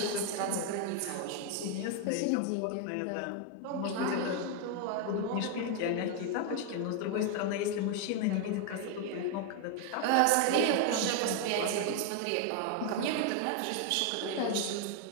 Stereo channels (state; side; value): different; both; correlation 0.01